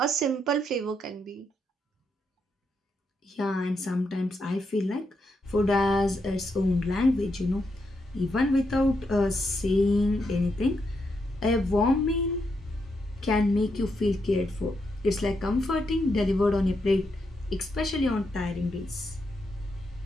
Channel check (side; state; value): both; normal; correlation 0.81